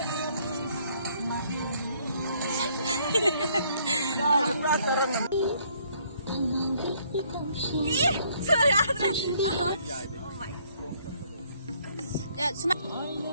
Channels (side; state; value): both; inverted; correlation -0.65